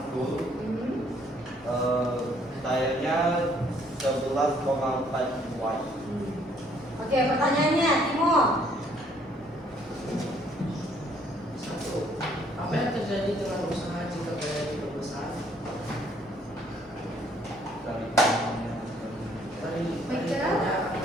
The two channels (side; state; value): both; normal; correlation 0.64